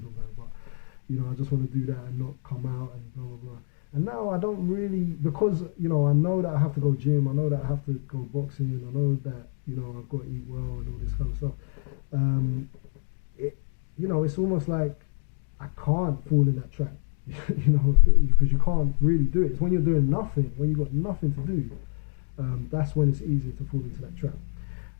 but you know, I just want to do that and not come out and blah blah blah. And now I don't really, because you know, I know that I have to go gym, I know that I have to go boxing, I know that, you know, I've got to eat well and all this kind of stuff. You know, it's almost like I can't fall in that trap, you know, because you can't really do it. It's when you're doing nothing, when you've got nothing to do, that's when it's easier to fall into that trap.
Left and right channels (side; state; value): right; silent; 59 dB below the other